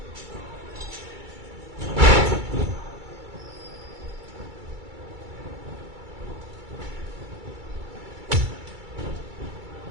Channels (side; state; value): left; late; 2.3 ms